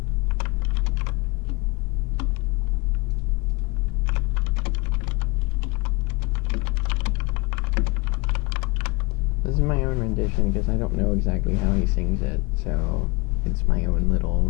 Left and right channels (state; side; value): quieter; right; 26.6 dB